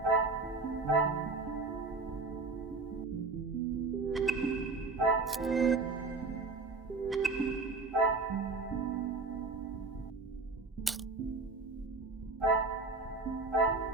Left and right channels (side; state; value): left; quieter; 3.9 dB